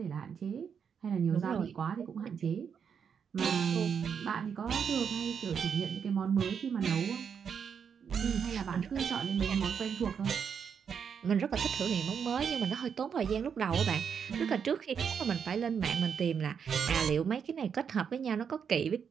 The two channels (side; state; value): left; quieter; 7.1 dB